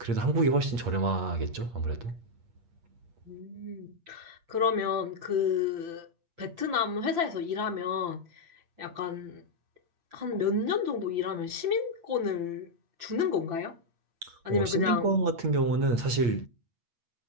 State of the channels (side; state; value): left; late; 8.5 ms